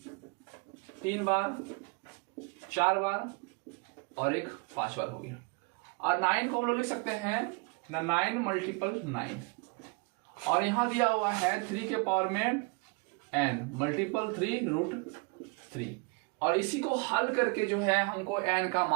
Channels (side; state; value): left; quieter; 30.2 dB